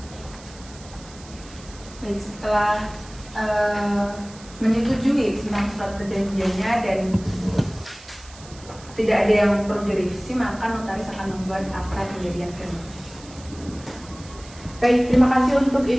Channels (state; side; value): noise; right; hiss, 20 dB below the sound